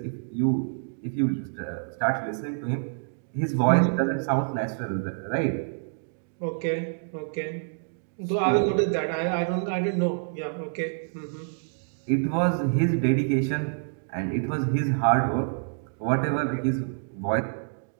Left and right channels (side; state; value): left; silent; digital silence